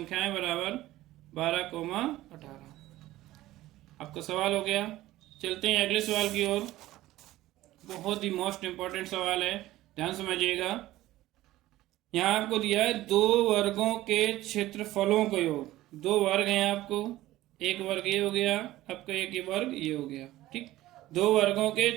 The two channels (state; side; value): quieter; left; 16.0 dB